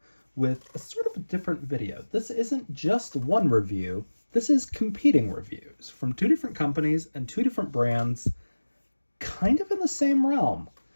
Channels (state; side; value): inverted; both; correlation -1.00